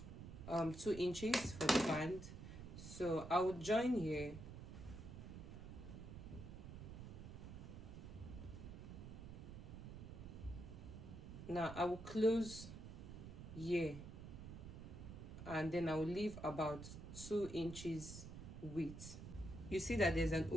inches for the band. So I will join here. Now I will close here, and then I will leave about 2 inches width. You see that there's an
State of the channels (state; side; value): noise; right; rumble, 10 dB below the sound